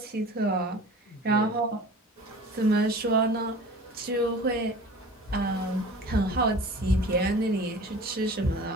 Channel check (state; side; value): normal; both; correlation 0.41